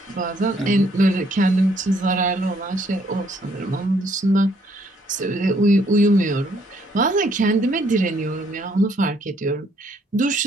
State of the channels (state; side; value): normal; both; correlation 0.67